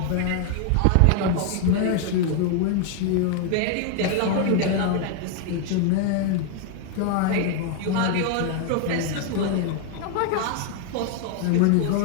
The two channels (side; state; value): both; different; correlation 0.01